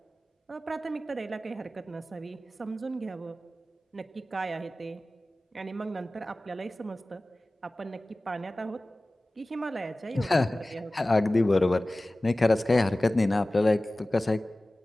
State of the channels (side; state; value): both; normal; correlation 0.97